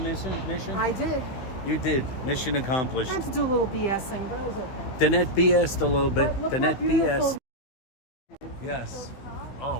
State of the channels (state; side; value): late; right; 16 ms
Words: I did. You did. Mission accomplished. I had to do a little BSing, but it was okay. Danette BS'd a little bit. Look how Danette beautiful. BS. Yes. Oh